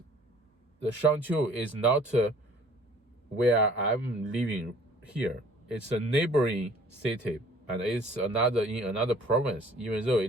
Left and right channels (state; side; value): normal; both; correlation 0.53